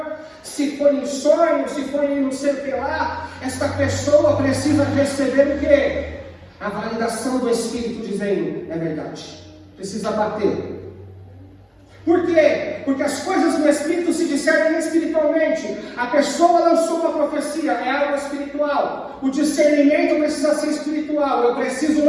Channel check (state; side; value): identical; both; correlation 1.00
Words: se foi em sonho, se foi em não sei o que lá, esta pessoa precisa receber o quê? A validação do Espírito dizendo, é verdade. Precisa bater. Por quê? Porque as coisas do Espírito se discernem espiritualmente. A pessoa lançou uma profecia, é algo espiritual. O discernimento precisa ser espiritual. Eu preciso